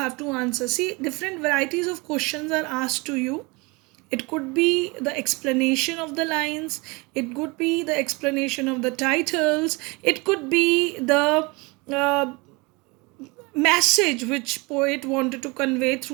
to answer. See, different varieties of questions are asked to you, it could be the explanation of the lines, it could be the explanation of the titles, it could be the uh, message which poet wanted to convey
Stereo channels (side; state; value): left; quieter; 26.7 dB